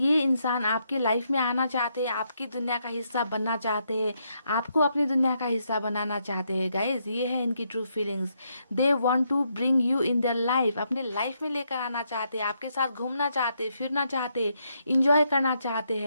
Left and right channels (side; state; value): both; inverted; correlation -0.77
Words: इंसान आपके लाइफ में आना चाहते हैं, आपकी दुनिया का हिस्सा बनना चाहते हैं, आपको अपनी दुनिया का हिस्सा बनाना चाहते हैं गाइज। ये है इनकी true feelings. They want to bring you in their life, अपने लाइफ में लेकर आना चाहते हैं, आपके साथ घूमना चाहते हैं, फिरना चाहते हैं, इंजॉय करना चाहते